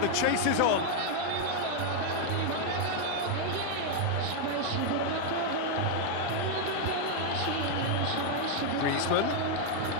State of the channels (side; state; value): both; different; correlation 0.00